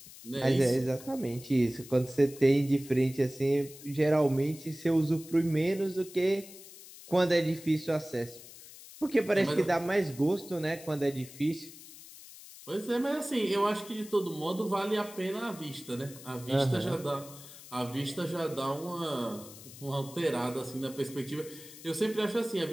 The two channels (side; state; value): left; noise; hiss, 17 dB below the sound